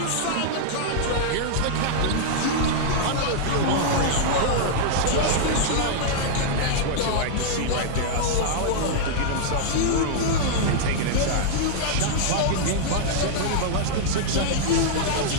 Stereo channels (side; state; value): both; different; correlation -0.01